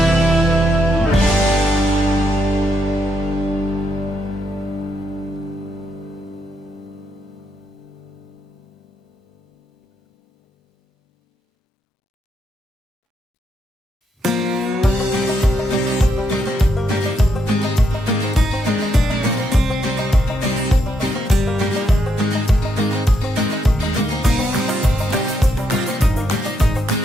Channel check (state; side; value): normal; both; correlation 0.78